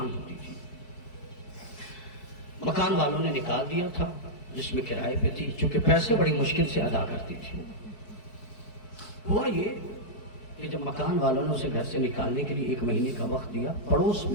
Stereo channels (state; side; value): late; right; 4.6 ms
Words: ہوتی تھی. مکان والوں نے نکال دیا تھا جس میں کرائے پہ تھی, چونکہ پیسے بڑی مشکل سے ادا کرتی تھی. ہوا یہ کہ جب مکان والوں نے اسے گھر سے نکالنے کے لیے 1 مہینے کا وقت دیا, پڑوس